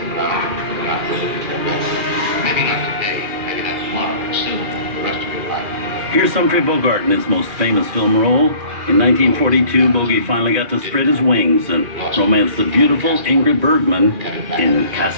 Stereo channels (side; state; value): left; late; 2.4 ms